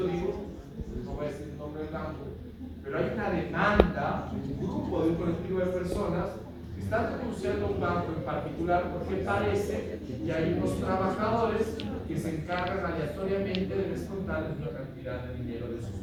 digo, no voy a decir el nombre del banco, pero hay una demanda de un grupo, de un colectivo de personas que están denunciando a un banco en particular porque parece que hay unos trabajadores que se encargan aleatoriamente de descontarles una cantidad de dinero de sus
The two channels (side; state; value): both; identical; correlation 1.00